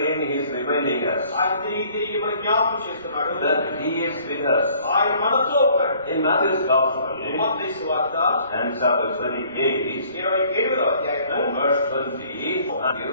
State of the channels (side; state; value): both; inverted; correlation -0.57